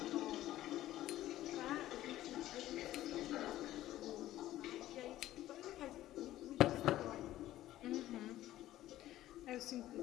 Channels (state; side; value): quieter; right; 14.3 dB